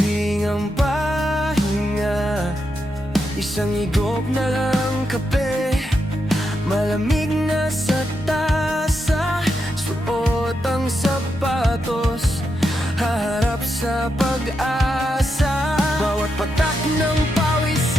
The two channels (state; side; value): normal; both; correlation 0.84